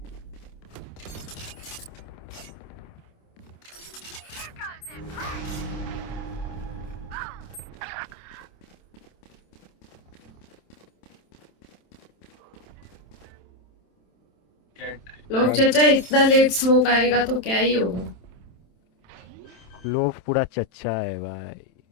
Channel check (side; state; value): right; late; 27 ms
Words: लोग चाचा इतना late smoke आएगा तो क्या ही होगा। लोग पूरा चच्चा है भाई,